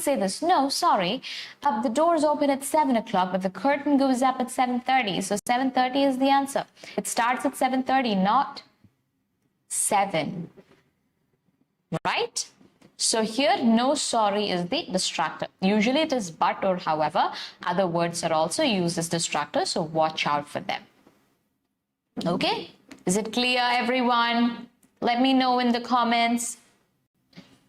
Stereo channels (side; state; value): both; identical; correlation 1.00